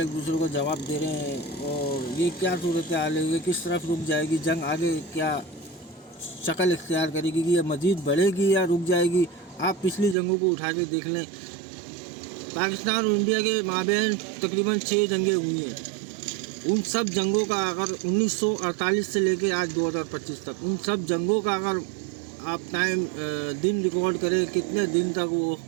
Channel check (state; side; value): drops out; left; at 10.2 s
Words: दूसरे को जवाब दे रहे हैं। और ये क्या सूरत हाल है, ये किस तरफ रुक जाएगी जंग, आगे क्या शक्ल इख्तियार करेगी, कि ये मज़ीद बढ़ेगी या रुक जाएगी। आप पिछली जंगों को उठा के देख लें, पाकिस्तान और इंडिया के माबैन तकरीबन 6 जंगें हुई हैं। उन सब जंगों का अगर 1948 से लेके आज 2025 तक, उन सब जंगों का अगर आप दिन रिकॉर्ड करें कितने दिन तक वो